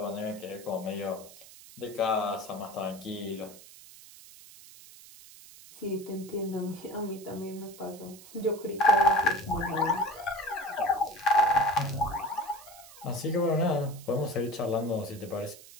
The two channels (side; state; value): right; noise; hiss, 19 dB below the sound